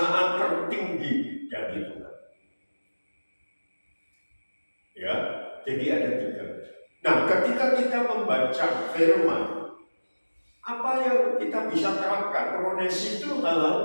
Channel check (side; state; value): both; inverted; correlation -1.00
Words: tertinggi dari Tuhan. Ya, jadi ada tiga. Nah, ketika kita membaca firman, apa yang kita bisa terapkan? Kronesis itu hal